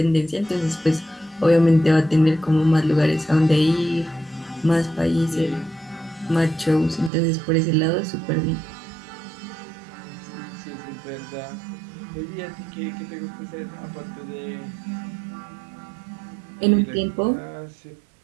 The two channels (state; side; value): drops out; left; at 7.1 s